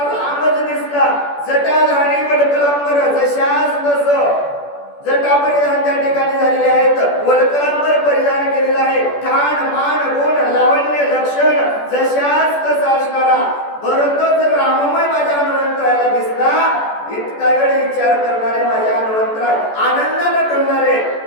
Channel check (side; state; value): right; late; 14 ms